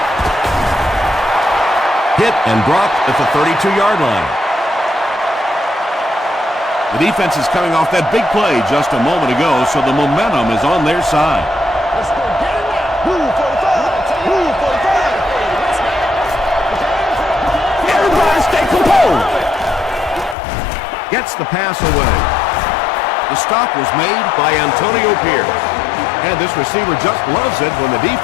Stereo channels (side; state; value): right; drops out; at 20.4 s